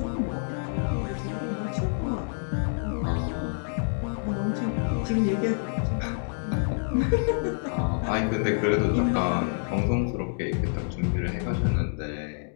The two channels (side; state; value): right; silent; digital silence